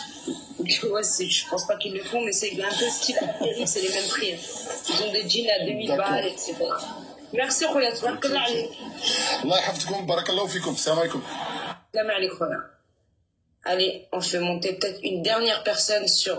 Ouais, je pense pas qu'ils le font, mais c'est un peu style Amérique, c'est les mêmes prix. Ils ont des jeans à 2000 balles, etc. Merci, Khoya. Tabarakallah alayk. Allah yahfazkoum, barakallahu fikoum. Salam alaikum. Salam alaikum, Khoya. Allez, on fait monter peut-être une dernière personne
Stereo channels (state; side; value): identical; both; correlation 1.00